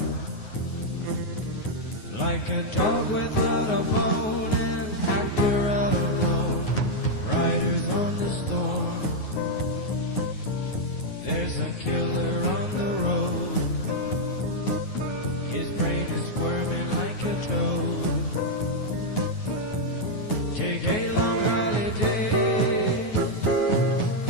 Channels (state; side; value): late; right; 9.5 ms